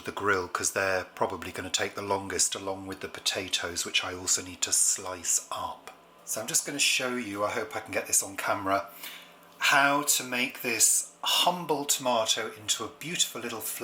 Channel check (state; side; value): identical; both; correlation 1.00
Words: the grill because they're probably going to take the longest, along with the potatoes, which I also need to slice up. So I'm just going to show you, I hope I can get this on camera, how to make this humble tomato into a beautiful little